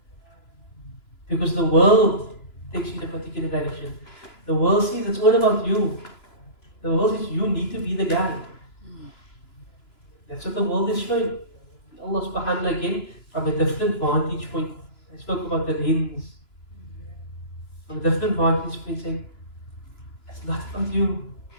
Because the world takes you in a particular direction. The world sees it's all about you. The world says you need to be the guy. That's what the world is showing. Allah subhanahu wa ta'ala again, from a different vantage point. I spoke about the lens. From a different vantage point saying, it's not about you.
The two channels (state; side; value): late; right; 2.9 ms